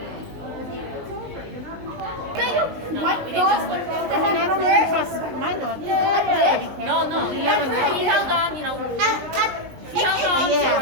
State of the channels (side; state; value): left; late; 19 ms